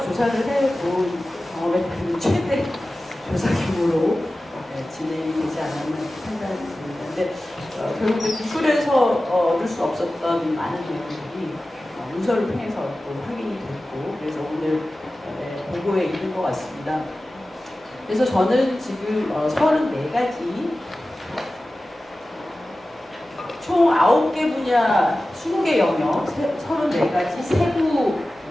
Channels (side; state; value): both; normal; correlation 0.96